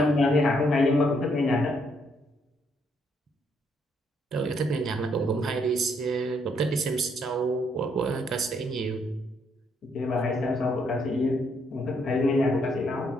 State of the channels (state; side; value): normal; both; correlation 0.72